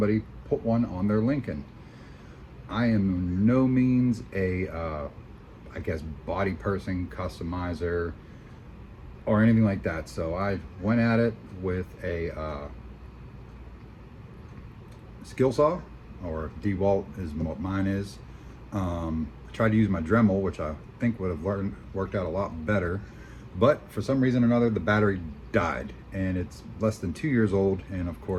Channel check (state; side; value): identical; both; correlation 1.00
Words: put one on their Lincoln. I am no means a, I guess, body person, customizer, or anything like that. So I went at it with a skill saw, or DeWalt is what mine is. I tried to use my Dremel, which I think would have worked out a lot better, but for some reason or another, the battery died, and it's less than 2 years old. And of